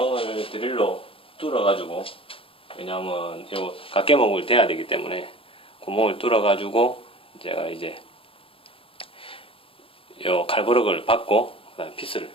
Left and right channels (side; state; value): right; late; 0.27 ms